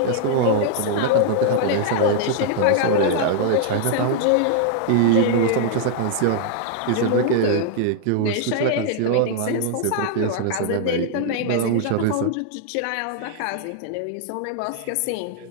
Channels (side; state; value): both; different; correlation -0.01